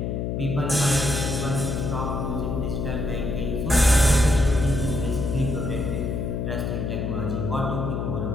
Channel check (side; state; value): left; noise; hum, 2 dB below the sound